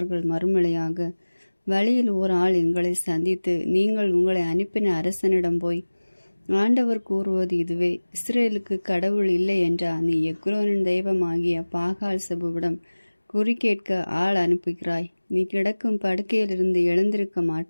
மறுமொழியாக, வழியில் ஓர் ஆள் எங்களை சந்தித்து, நீங்கள் உங்களை அனுப்பின அரசனிடம் போய், ஆண்டவர் கூறுவது இதுவே, இஸ்ரேலுக்கு கடவுள் இல்லை என்றா நீ எக்ரோனின் தெய்வமாகிய பாகால் செபுவிடம் குறிக்கேட்க ஆள் அனுப்புகிறாய்? நீ கிடக்கும் படுக்கையிலிருந்து எழுந்திருக்க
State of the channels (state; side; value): inverted; both; correlation -1.00